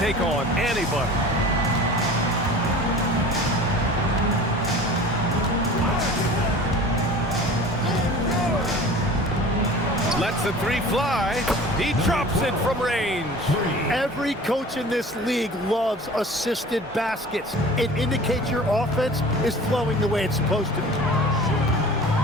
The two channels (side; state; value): both; normal; correlation 0.41